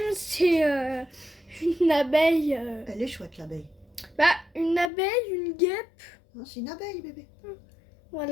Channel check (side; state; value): right; drops out; at 4.9 s